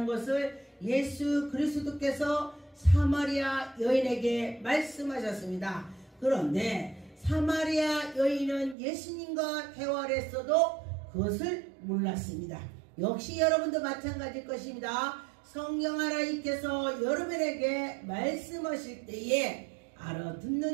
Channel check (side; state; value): left; drops out; at 8.8 s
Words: 것을 예수 그리스도께서 사마리아 여인에게 말씀하셨습니다. 그런데 사마리아 여인은 예수님과 대화를 했어도 그것을 몰랐습니다. 역시 여러분도 마찬가지일 것입니다. 성령 하나님께서 여러분에게 말씀하실 때에